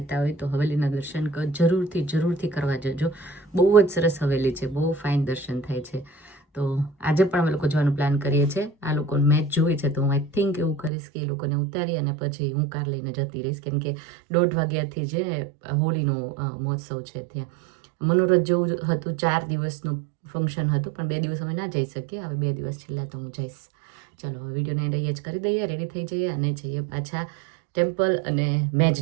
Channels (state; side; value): drops out; left; at 10.9 s